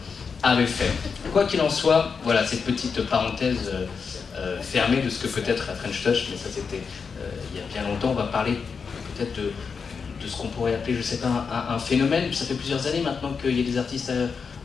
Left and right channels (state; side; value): quieter; right; 5.6 dB